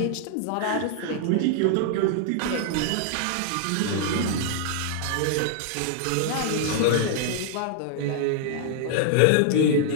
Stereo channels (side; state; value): both; different; correlation -0.01